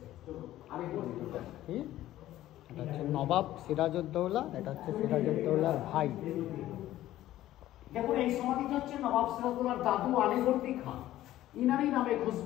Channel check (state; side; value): quieter; right; 14.2 dB